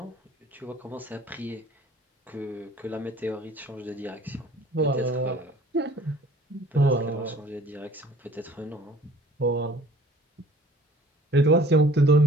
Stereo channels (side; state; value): both; normal; correlation 0.52